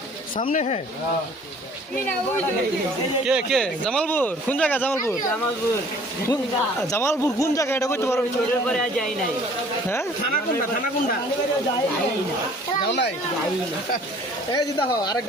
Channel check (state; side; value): normal; both; correlation 0.53